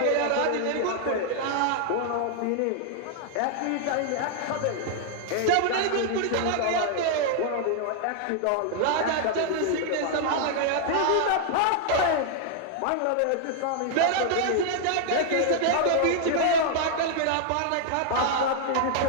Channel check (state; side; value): different; both; correlation 0.00